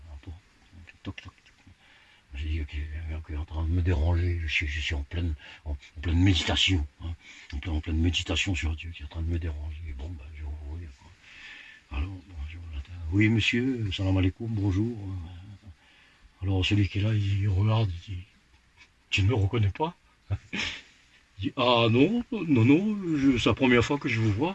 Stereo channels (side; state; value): both; identical; correlation 1.00